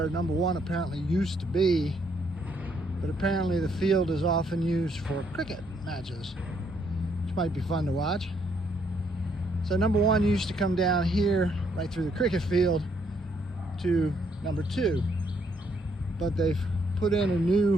number one apparently used to be, but apparently the field is often used for cricket matches, which might be fun to watch. So number one used to come down here right through the cricket field to number two, but they've put in a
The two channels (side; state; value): both; normal; correlation 0.71